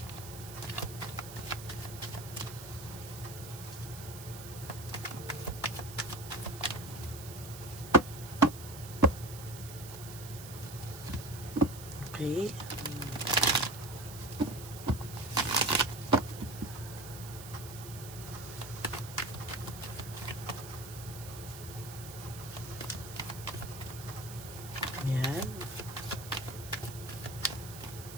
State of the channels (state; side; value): noise; right; hiss, 13 dB below the sound